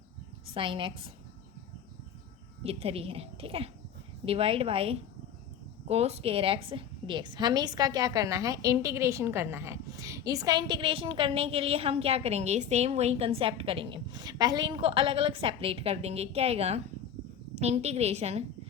sin x, ये 3 है, ठीक है, divide by cos square x dx। हमें इसका क्या करना है? इंटीग्रेशन करना है। इसका इंटीग्रेशन करने के लिए हम क्या करेंगे? सेम वही कंसेप्ट करेंगे। पहले इनको अलग अलग सेपरेट कर देंगे। क्या आएगा? Integration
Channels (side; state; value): right; quieter; 8.1 dB